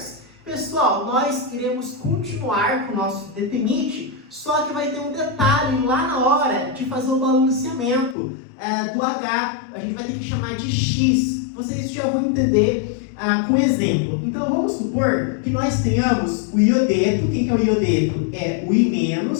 Pessoal, nós iremos continuar com o nosso detenite, só que vai ter um detalhe lá na hora de fazer o balanceamento do H, a gente vai ter que chamar de X. Vocês já vão entender com exemplo. Então vamos supor que nós tenhamos o iodeto. Quem que é o iodeto? É o I-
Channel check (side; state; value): right; drops out; at 8.2 s